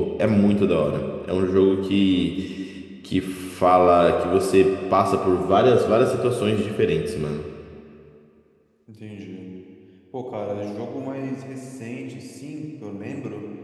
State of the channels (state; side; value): identical; both; correlation 1.00